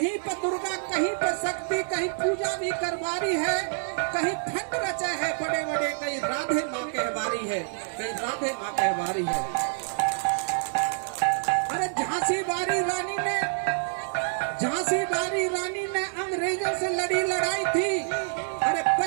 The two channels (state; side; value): silent; left; digital silence